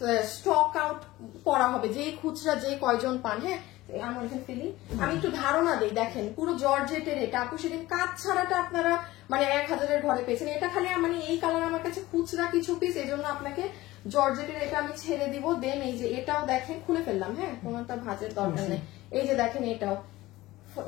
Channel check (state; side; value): quieter; right; 17.9 dB